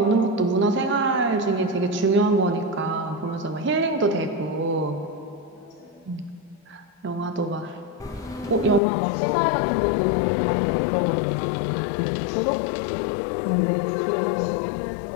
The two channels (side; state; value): right; drops out; at 8.8 s